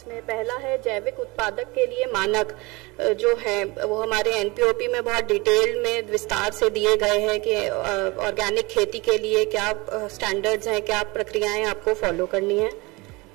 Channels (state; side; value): quieter; left; 24.5 dB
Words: पहला है जैविक उत्पादक के लिए मानक जो है वो हमारे एनपीओपी में बहुत डिटेल में विस्तार से दिए गए हैं कि ऑर्गेनिक खेती के लिए क्या स्टैंडर्ड्स हैं, क्या प्रक्रियाएं आपको फॉलो करनी है।